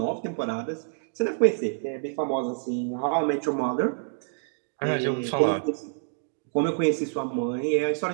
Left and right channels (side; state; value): left; silent; digital silence